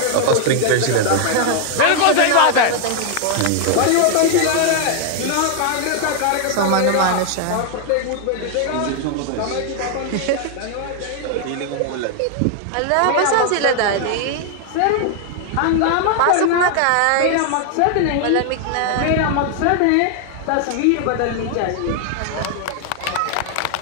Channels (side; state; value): both; different; correlation 0.00